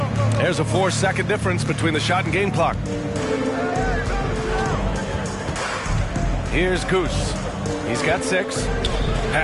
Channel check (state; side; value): identical; both; correlation 1.00